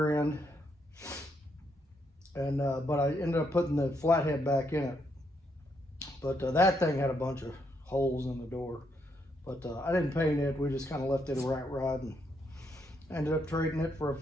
end, and but I ended up putting the flathead back in it. But that thing had a bunch of holes in the door, but I didn't paint it. We just kind of left it a rat rod and ended up trading it for a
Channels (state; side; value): normal; both; correlation 0.76